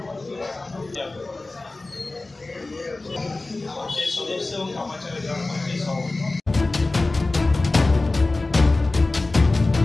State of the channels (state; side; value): quieter; right; 3.2 dB